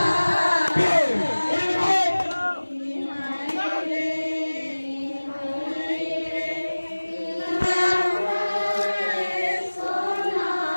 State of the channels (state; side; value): inverted; both; correlation -1.00